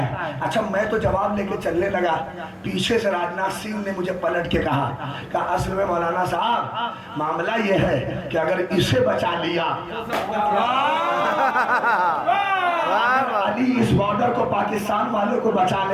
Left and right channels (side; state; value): both; identical; correlation 1.00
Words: अच्छा, मैं तो जवाब लेके चलने लगा, पीछे से राजनाथ सिंह ने मुझे पलट के कहा असल में मौलाना साहब मामला ये है कि अगर इसे बचा लिया, अली इस बॉर्डर को पाकिस्तान वाले को